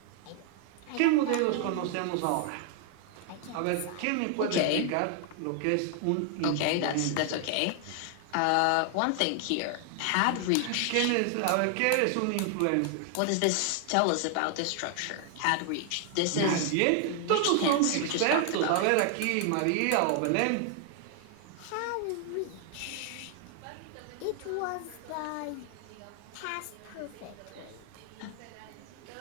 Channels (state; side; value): different; both; correlation 0.00